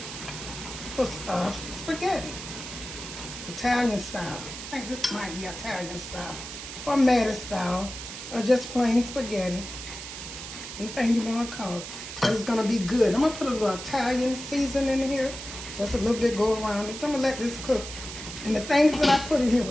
spaghetti. Italian style. I think this might be Italian style. Or Mattie style. Or just plain spaghetti. Anything you want to call it. But it's going to be good. I'm going to put a little Italian seasoning in here. Just a little bit, go around this. I'm going to let this cook. And the things that I put in here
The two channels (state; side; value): noise; right; hiss, 10 dB below the sound